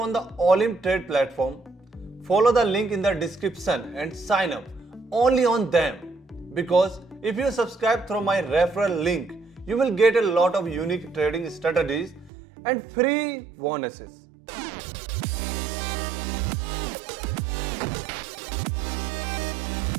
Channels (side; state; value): left; drops out; at 12.3 s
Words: the Olymp Trade platform. Follow the link in the description and sign up only on them, because if you subscribe through my referral link, you will get a lot of unique trading strategies and free bonuses.